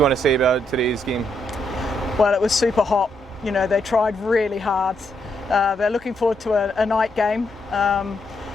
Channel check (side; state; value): both; normal; correlation 0.78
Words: want to say about today's game? Well, it was super hot. They tried really hard. They're looking forward to a night game. And